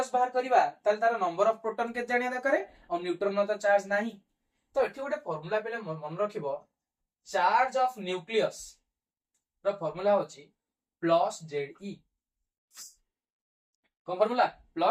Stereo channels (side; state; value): both; identical; correlation 1.00